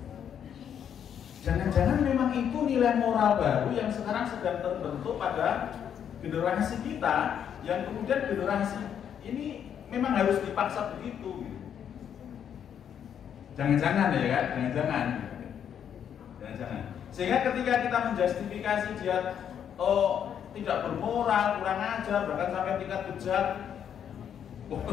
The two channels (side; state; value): right; quieter; 8.7 dB